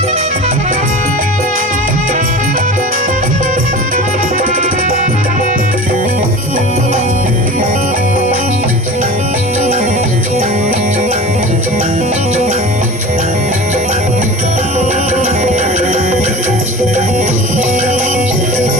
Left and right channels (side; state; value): both; normal; correlation 0.35